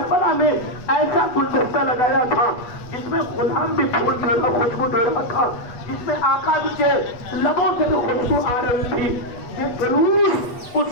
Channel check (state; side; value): late; right; 8.2 ms